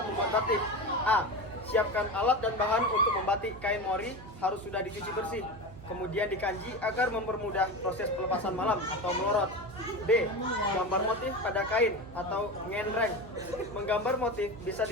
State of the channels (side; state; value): right; noise; hum, 16 dB below the sound